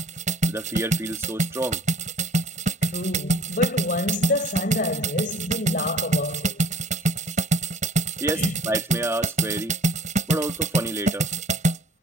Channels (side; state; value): both; normal; correlation 0.52